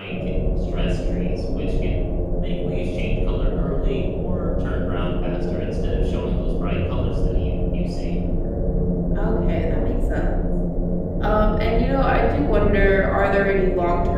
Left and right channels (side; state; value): both; identical; correlation 1.00